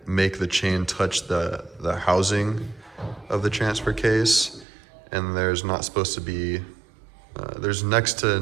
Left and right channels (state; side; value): drops out; left; at 4.7 s